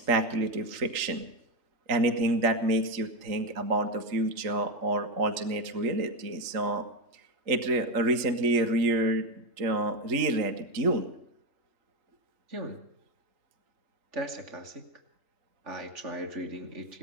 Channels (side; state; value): left; late; 3.8 ms